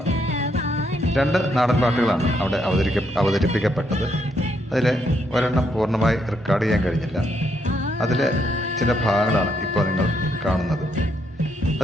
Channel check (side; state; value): both; normal; correlation 0.75